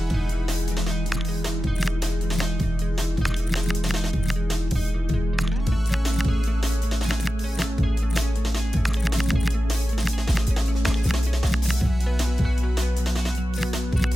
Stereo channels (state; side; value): normal; both; correlation 0.93